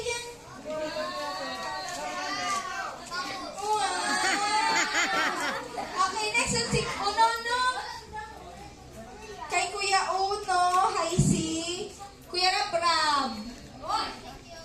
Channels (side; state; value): both; identical; correlation 1.00